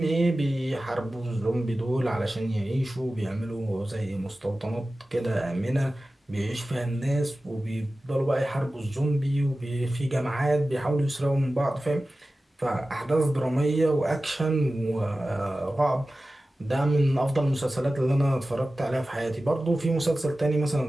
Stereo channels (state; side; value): normal; both; correlation 0.95